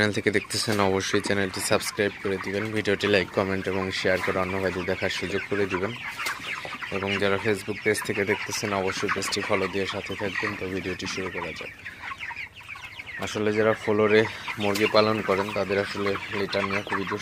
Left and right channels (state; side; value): identical; both; correlation 1.00